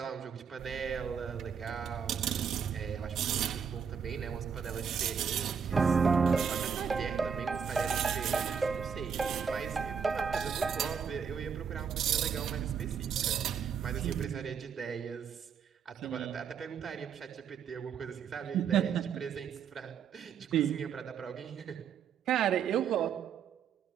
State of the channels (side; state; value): left; quieter; 7.0 dB